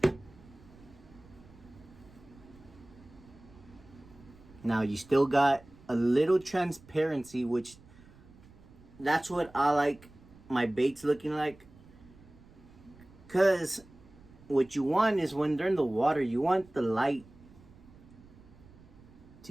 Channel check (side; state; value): right; noise; rumble, 23 dB below the sound